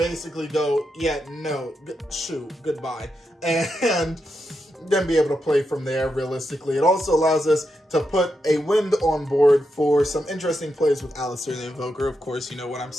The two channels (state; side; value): normal; both; correlation 0.85